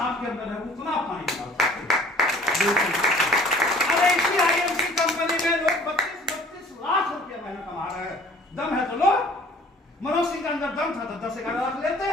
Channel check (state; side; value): normal; both; correlation 0.51